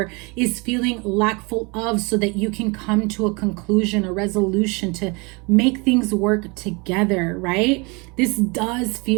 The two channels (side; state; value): left; quieter; 28.6 dB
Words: is feeling lackful of, so that you can come to a conclusion, a resolution to make things work together, right? This does